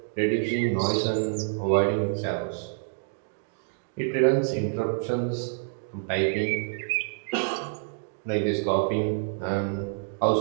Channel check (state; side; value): silent; left; digital silence